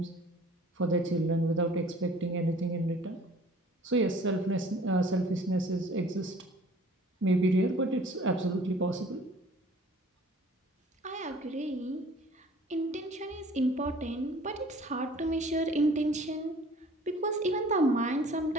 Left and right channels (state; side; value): normal; both; correlation 0.51